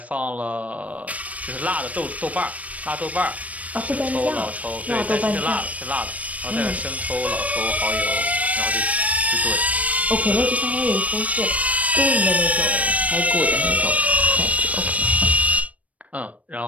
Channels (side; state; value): left; late; 0.068 ms